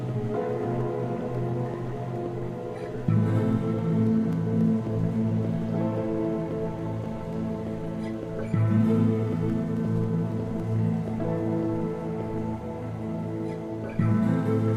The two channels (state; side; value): identical; both; correlation 1.00